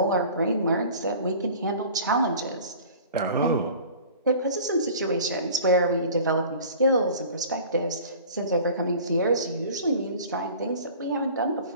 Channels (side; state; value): both; inverted; correlation -0.44